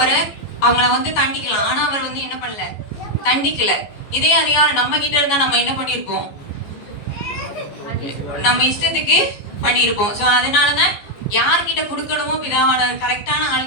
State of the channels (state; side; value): late; right; 14 ms